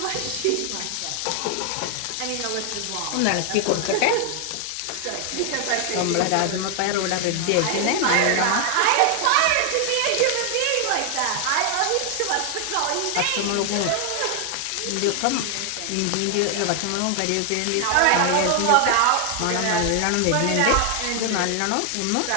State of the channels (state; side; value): different; both; correlation 0.00